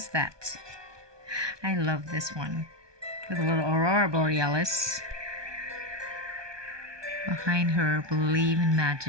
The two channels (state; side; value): late; left; 1.2 ms